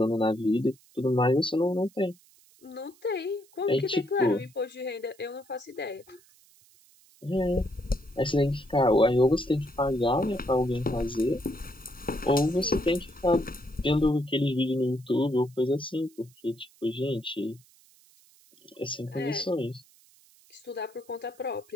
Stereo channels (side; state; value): right; noise; hiss, 29 dB below the sound